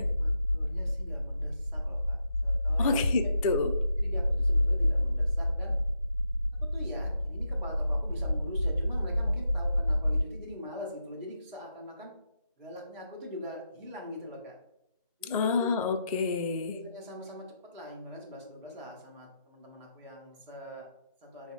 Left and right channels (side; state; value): both; inverted; correlation -0.85